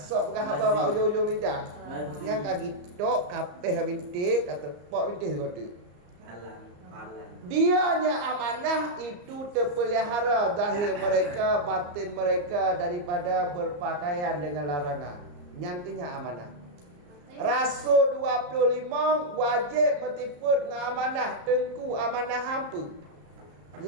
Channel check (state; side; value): late; left; 34 ms